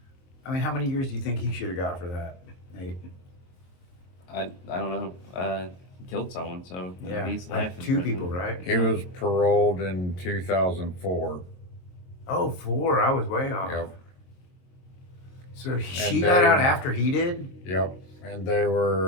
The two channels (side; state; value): right; late; 23 ms